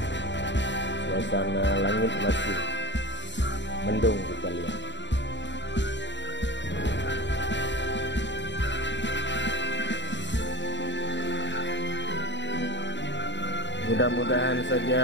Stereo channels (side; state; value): right; late; 0.52 ms